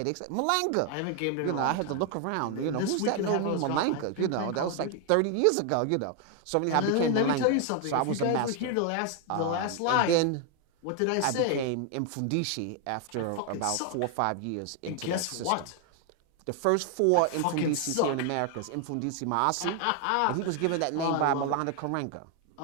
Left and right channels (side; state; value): both; different; correlation 0.01